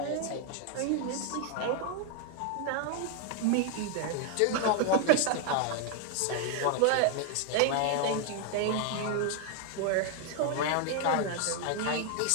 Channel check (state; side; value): different; both; correlation 0.01